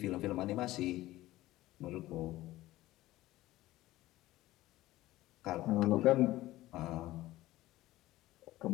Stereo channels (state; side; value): quieter; right; 16.7 dB